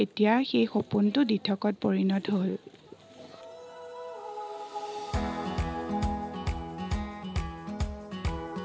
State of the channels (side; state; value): both; identical; correlation 1.00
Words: এতিয়া সেই সপোনটো দিঠকত পৰিণত হ'ল।